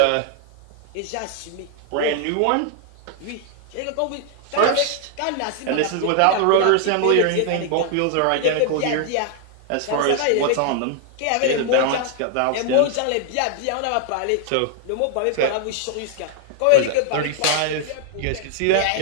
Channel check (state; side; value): different; both; correlation 0.00